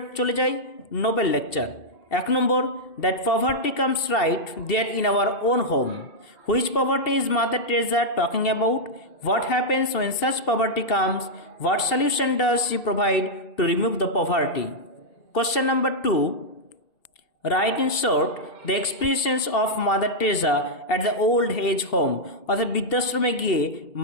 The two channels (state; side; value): late; right; 2.7 ms